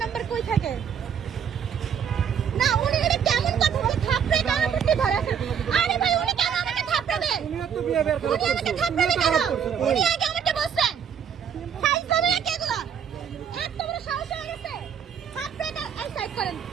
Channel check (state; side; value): quieter; left; 7.8 dB